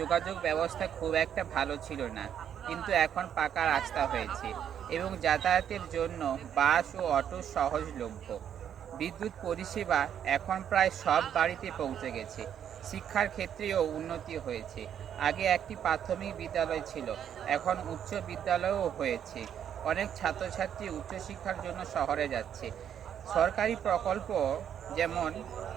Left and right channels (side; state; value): left; quieter; 9.2 dB